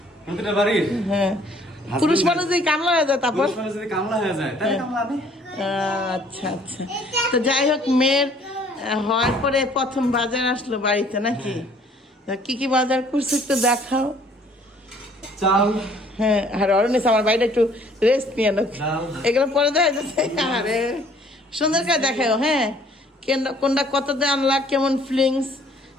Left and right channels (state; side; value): normal; both; correlation 0.58